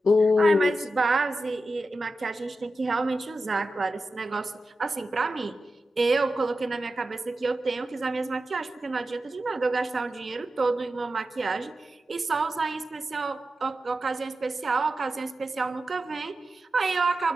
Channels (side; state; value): both; normal; correlation 0.92